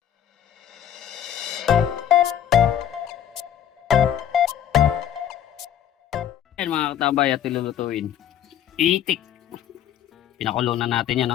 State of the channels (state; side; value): quieter; right; 10.1 dB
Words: Yan mga katabay at ilulutuin. Itik. Pinakulo na natin yan,